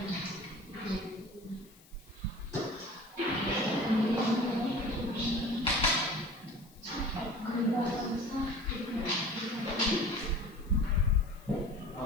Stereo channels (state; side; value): noise; left; hiss, 26 dB below the sound